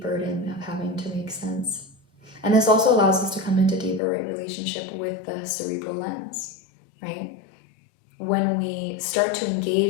burden of having to make sense. And this also allows us to come into deeper relationship with the cerebral lens, right? When we start to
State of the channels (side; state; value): right; drops out; at 4.0 s